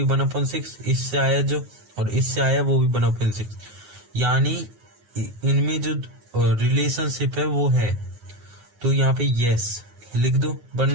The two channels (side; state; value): left; late; 9.5 ms